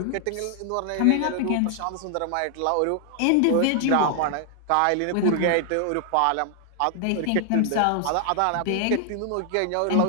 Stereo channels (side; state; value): both; different; correlation 0.00